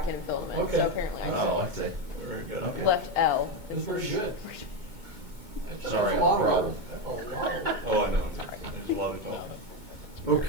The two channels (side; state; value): left; late; 2.2 ms